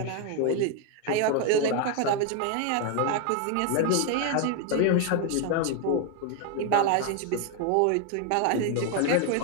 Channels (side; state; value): both; different; correlation 0.01